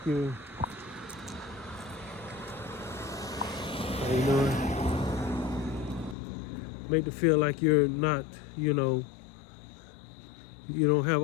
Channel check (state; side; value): drops out; right; at 6.2 s